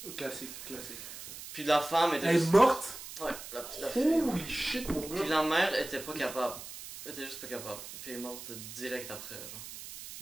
Classique. Puis la femme était... Elle est morte? Ouais, la petite fille. Holy shit, mon gars! Puis la mère était pas capable. Elle était juste pas capable. Puis elle est morte direct après, genre.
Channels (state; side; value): noise; right; hiss, 12 dB below the sound